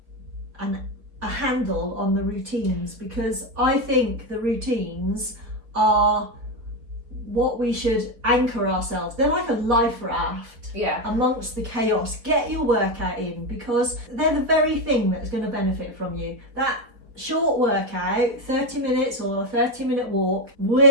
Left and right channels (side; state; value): left; late; 4.2 ms